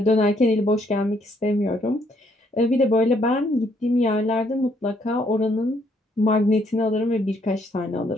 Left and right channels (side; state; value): both; normal; correlation 0.69